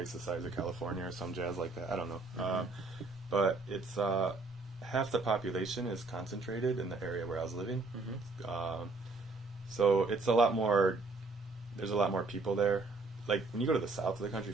the size of California or some jazz like that. I don't know. But it's, half the population is concentrated in the area where I was living. So it's a lot more, there's a lot more people there. Like, when you go to the south of the country,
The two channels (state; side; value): quieter; left; 3.6 dB